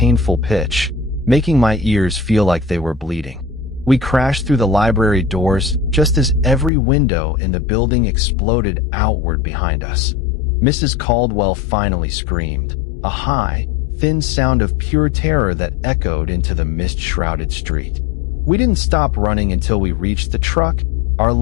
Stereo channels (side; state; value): right; drops out; at 6.7 s